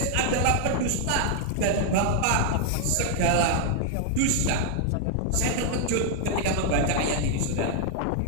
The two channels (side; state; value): both; different; correlation 0.00